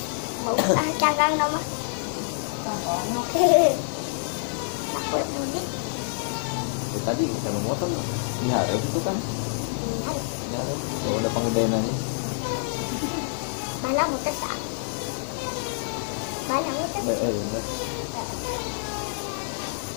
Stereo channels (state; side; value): silent; right; digital silence